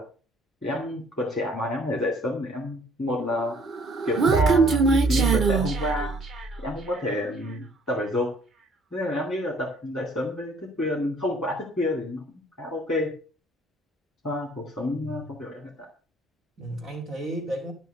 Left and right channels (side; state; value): both; normal; correlation 0.59